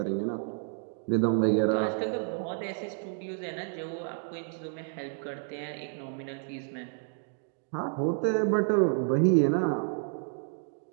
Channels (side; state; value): left; silent; 58 dB below the other